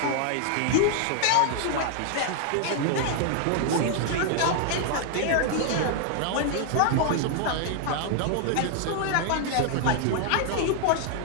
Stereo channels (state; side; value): different; both; correlation 0.00